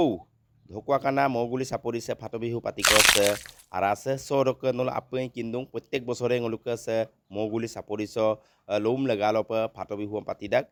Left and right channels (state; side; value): identical; both; correlation 1.00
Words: dhokwa kana moguli sapori se phato bihu patiko se arase soroke nol apeng kindung প্রত্যেক বছরে ngoluka se moguli sapori so lom legalo pa phato bihu patidak